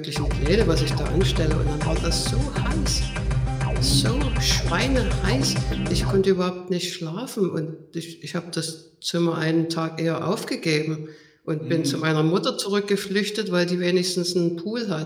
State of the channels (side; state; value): both; identical; correlation 1.00